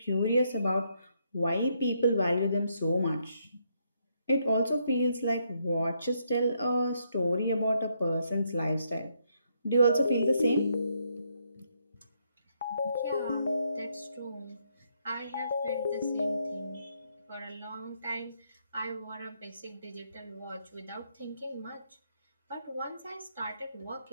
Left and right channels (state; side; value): inverted; both; correlation -0.75